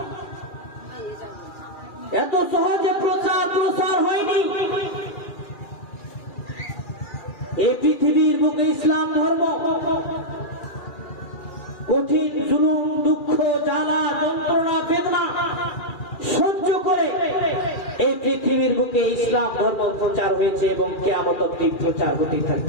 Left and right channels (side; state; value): right; late; 2.4 ms